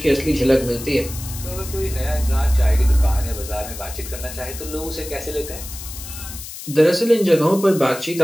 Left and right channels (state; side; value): noise; left; hiss, 12 dB below the sound